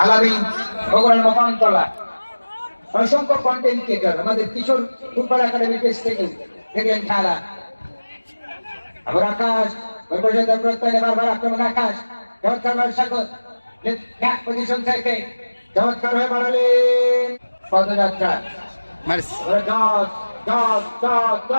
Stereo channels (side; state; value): both; inverted; correlation -1.00